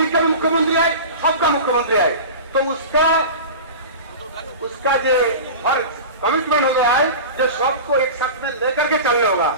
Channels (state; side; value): inverted; both; correlation -0.31